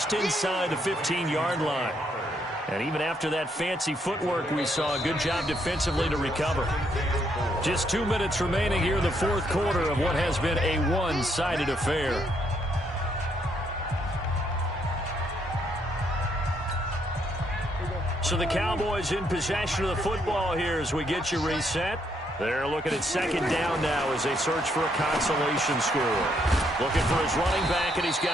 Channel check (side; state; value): both; normal; correlation 0.73